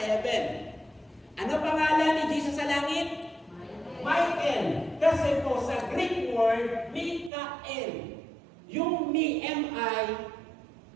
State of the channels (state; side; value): drops out; left; at 7.3 s